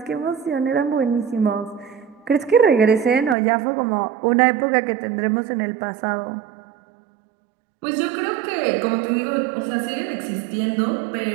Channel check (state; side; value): drops out; left; at 3.4 s